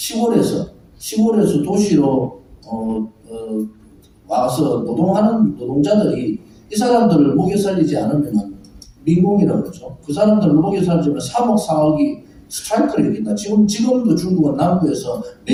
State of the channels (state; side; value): identical; both; correlation 1.00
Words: 도시로 와서 노동하는 노동자들이 이 사람들을 먹여 살리지 않으면 민공이라고 그러죠. 그 사람들을 먹여 살리면 3억, 4억이 스트라이크를 일으킨다. 지금도 중국은 남부에서